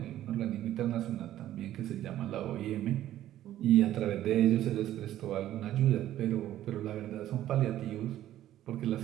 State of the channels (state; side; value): quieter; left; 12.9 dB